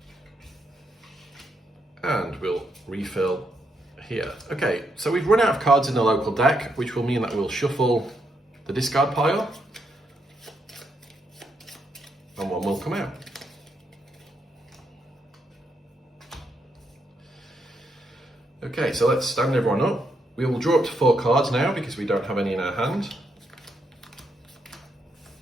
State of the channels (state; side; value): normal; both; correlation 0.79